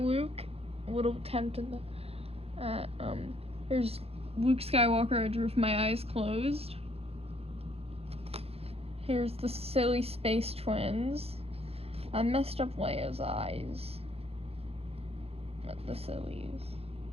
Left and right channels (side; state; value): left; late; 0.29 ms